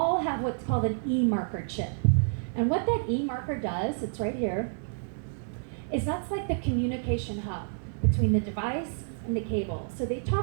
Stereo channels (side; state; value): left; silent; digital silence